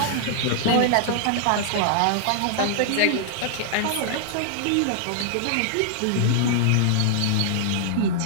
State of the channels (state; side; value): different; both; correlation -0.01